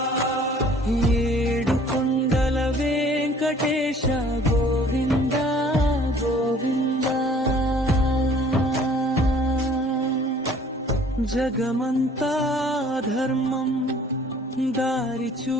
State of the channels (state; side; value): normal; both; correlation 0.54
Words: ఏడు కొండల వెంకటేశ గోవింద గోవింద, జగమంతా ధర్మం దారి